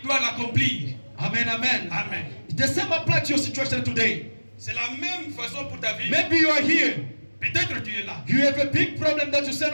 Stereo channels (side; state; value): both; inverted; correlation -1.00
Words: doit l'accomplir. Amen, amen. Amen. The same applies to your situation today. C'est la même façon pour ta vie. Maybe you are here. Peut-être tu es là. You have a big problem that you say,